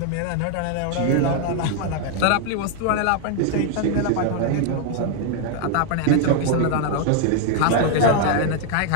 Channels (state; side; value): different; both; correlation 0.00